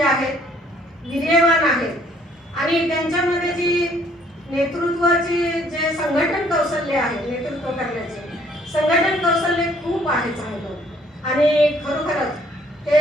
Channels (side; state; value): both; normal; correlation 0.62